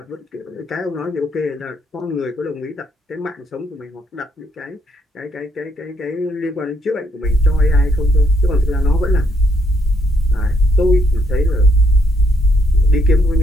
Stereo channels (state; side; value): normal; both; correlation 0.72